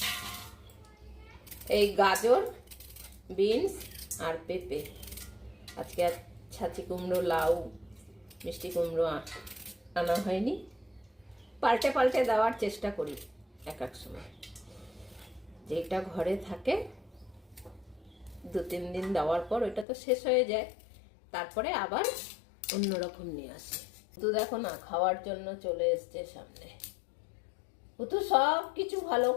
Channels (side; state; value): right; drops out; at 19.9 s